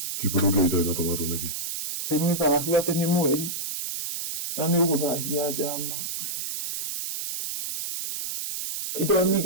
Chipo ndũngĩarĩire na tomato nĩkĩ? Atĩ nĩ thahu, atĩ nĩ mweri na nĩ ũgũthahia njama. Indo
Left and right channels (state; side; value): noise; right; hiss, 5 dB below the sound